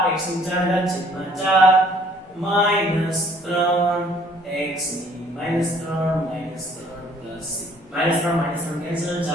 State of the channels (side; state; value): both; normal; correlation 0.59